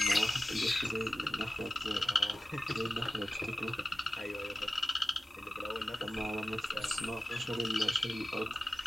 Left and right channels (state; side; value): normal; both; correlation 0.94